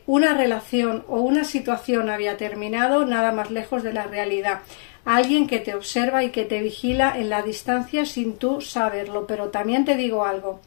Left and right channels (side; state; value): right; silent; 62 dB below the other